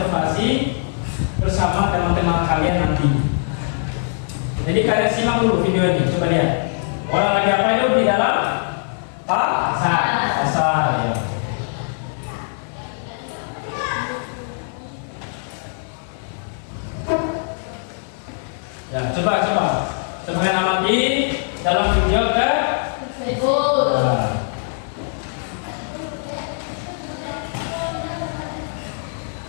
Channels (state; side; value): silent; right; 65 dB below the other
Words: bersama teman-teman kalian nanti. Jadi kalian simak dulu video ini, coba lihat. Orang lagi apa itu di dalam pasar ya. Ya, coba kalian amati dalam video Tersebut.